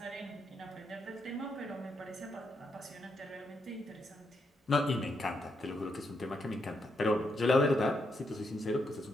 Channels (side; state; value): both; normal; correlation 0.80